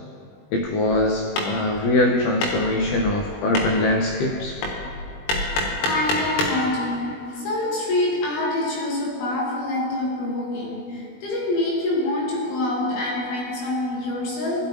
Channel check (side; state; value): right; late; 20 ms